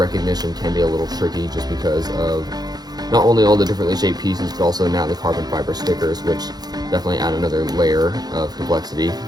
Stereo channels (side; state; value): left; late; 0.19 ms